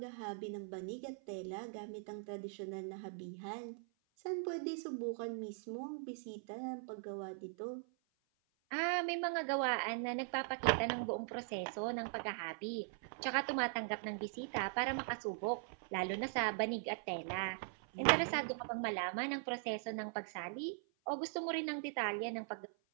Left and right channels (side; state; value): left; silent; 50 dB below the other